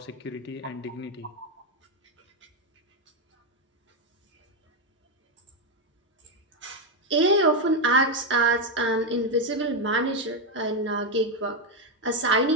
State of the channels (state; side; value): normal; both; correlation 0.05